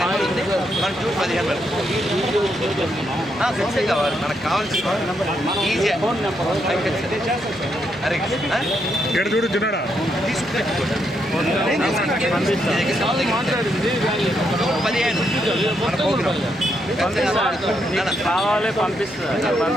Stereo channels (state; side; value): normal; both; correlation 0.79